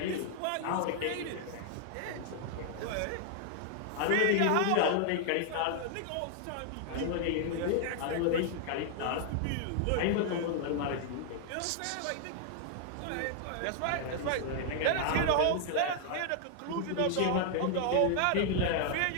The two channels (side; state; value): both; different; correlation 0.00